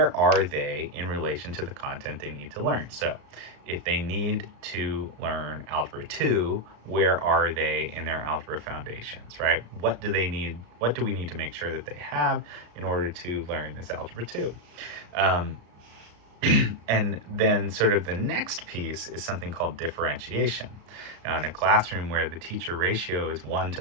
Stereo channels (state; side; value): late; left; 34 ms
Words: are they in relation to the content they need to learn? So if they need to learn Algebra 2, where are they in their algebra foundations, right? What do they need? What do we need to make sure that they have in order to learn this Algebra 2? And then sort of the next piece is something called differentiation. Now, in a classroom where the teacher ratio is 1 to